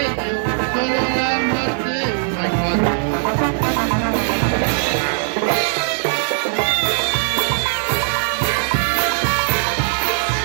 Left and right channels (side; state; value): left; silent; digital silence